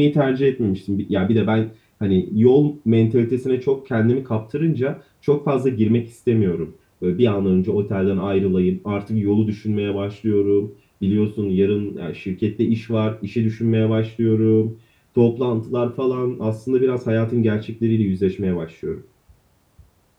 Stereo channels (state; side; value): identical; both; correlation 1.00